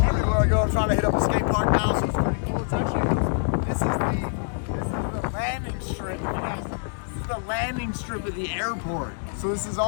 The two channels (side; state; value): right; silent; digital silence